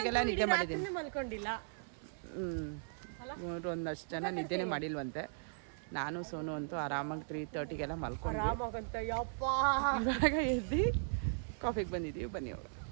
ನಿದ್ದೆ ಮಾಡಿದ್ದೀನಿ. ಮಲ್ಕೊಂಡಿಲ್ಲ. ಇವರು ಒಂದಷ್ಟು ಜನ ನಿದ್ದೆನೇ ಮಾಡಿಲ್ವಂತೆ. ನಾನು ಸೋನು ಅಂತೂ ಆರಾಮಾಗಿ 3:30ಗೆಲ್ಲ ಮಲ್ಕೊಂಡು ಇವಾಗ ಎದ್ದು ಕಾಫಿಗೆ ಬಂದಿದ್ದೀವಿ. ಬನ್ನಿ ಅವರು.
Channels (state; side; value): silent; left; 53 dB below the other